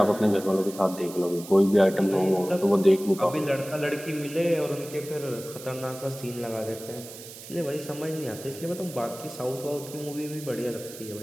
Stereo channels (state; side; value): noise; right; hiss, 15 dB below the sound